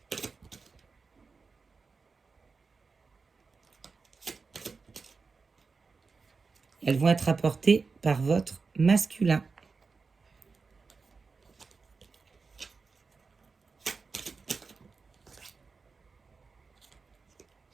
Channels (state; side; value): quieter; left; 4.6 dB